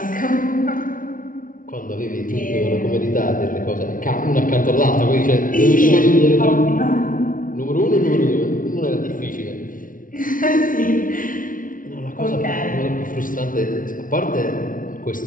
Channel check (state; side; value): late; right; 0.39 ms